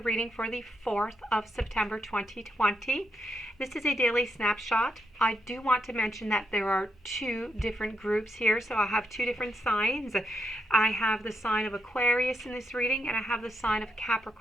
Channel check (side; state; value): both; normal; correlation 0.80